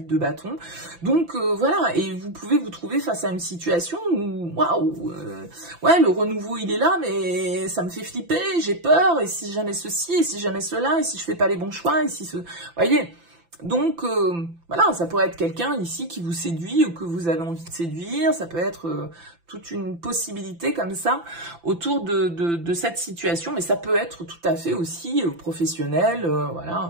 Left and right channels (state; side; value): late; left; 5.9 ms